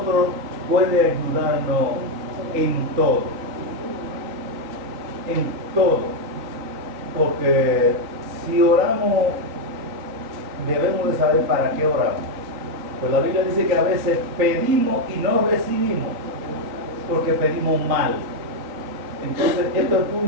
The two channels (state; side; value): late; left; 3.9 ms